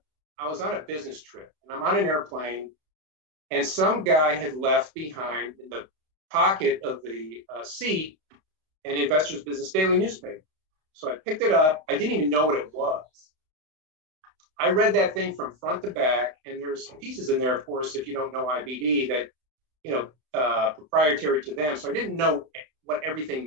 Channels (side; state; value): left; late; 32 ms